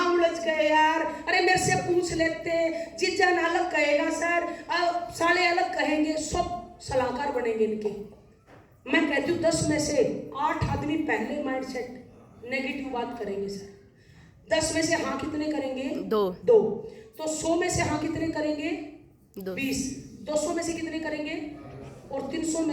उलझ गए यार, अरे मेरे से पूछ लेते, जीजान अलग कहेगा सर, साले अलग कहेंगे, सब सलाहकार बनेंगे इनके। मैं कहती हूँ 10 में से 8 आदमी पहले माइंड सेट नेगेटिव बात करेंगे सर। 10 में से हाँ कितने करेंगे? 2। तो 100 में से हाँ कितने करेंगे? 20। 200 में से कितने करेंगे? और 300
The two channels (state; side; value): identical; both; correlation 1.00